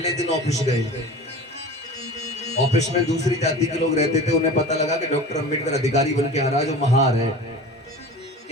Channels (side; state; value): both; normal; correlation 0.36